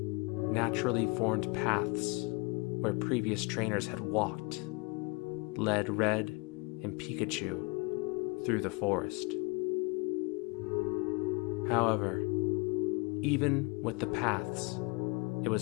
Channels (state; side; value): quieter; right; 28.7 dB